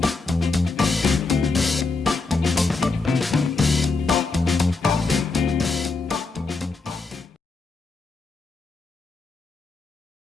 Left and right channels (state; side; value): quieter; right; 3.9 dB